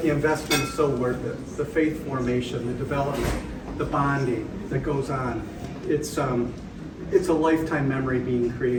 the investment is so worth it. The faith formation, the development, the bonding that goes on. It's a lifetime memory being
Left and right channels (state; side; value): identical; both; correlation 1.00